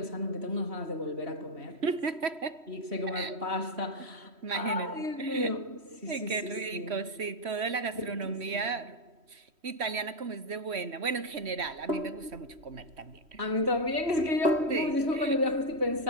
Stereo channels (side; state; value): left; late; 3.1 ms